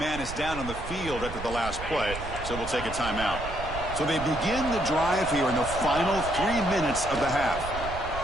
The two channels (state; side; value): noise; right; rumble, 9 dB below the sound